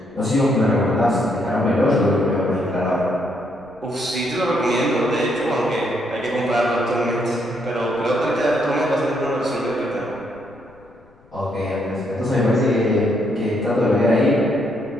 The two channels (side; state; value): left; noise; rumble, 29 dB below the sound